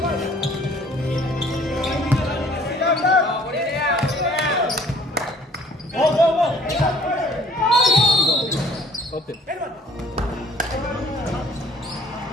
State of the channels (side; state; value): both; normal; correlation 0.54